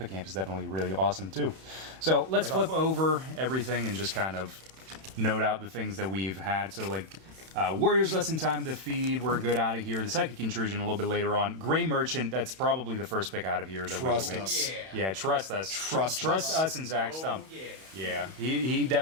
is definitely really awesome too. So let's flip over everything and just kind of note out the things that we've had. So like Warriors Lesson Time to Feed, we're good out of here. The Psychic Intrusion a little bit later on. Gray Merchant, that's probably the first pick out of here. That Trust we us. Yeah, trust us. Trust us and Zach Stump. Yeah, he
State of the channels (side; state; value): left; late; 31 ms